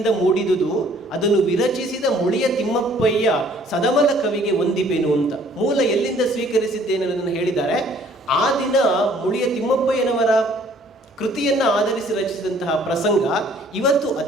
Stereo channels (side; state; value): both; normal; correlation 0.58